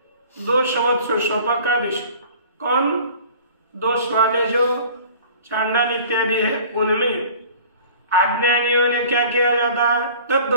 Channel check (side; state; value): both; inverted; correlation -0.46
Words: दोषवत्सु स्वपाकादिषु, कौन? दोष वाले जो चांडाल इत्यादि है, उनमें अज्ञानियों ने क्या किया जाता है?